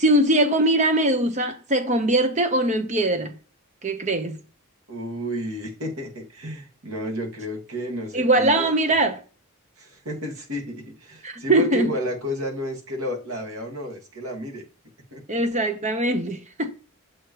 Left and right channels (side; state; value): both; normal; correlation 0.10